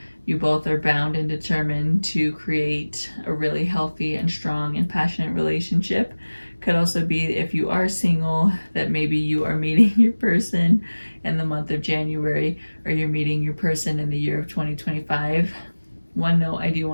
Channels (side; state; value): both; inverted; correlation -1.00